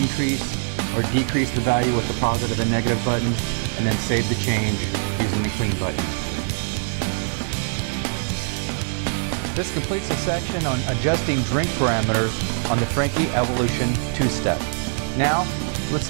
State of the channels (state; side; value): silent; left; digital silence